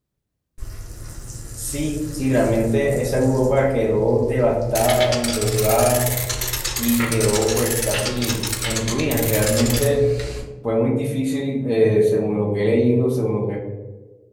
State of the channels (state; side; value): identical; both; correlation 1.00